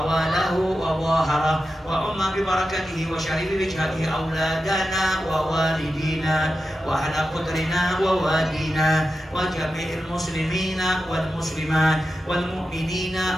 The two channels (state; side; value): normal; both; correlation 0.91